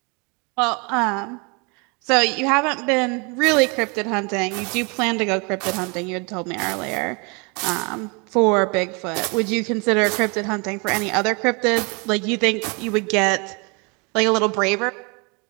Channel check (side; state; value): left; quieter; 31.2 dB